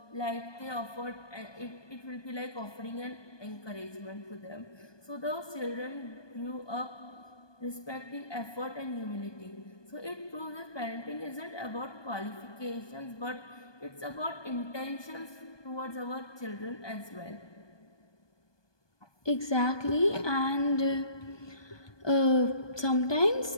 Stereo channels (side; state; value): right; late; 1.2 ms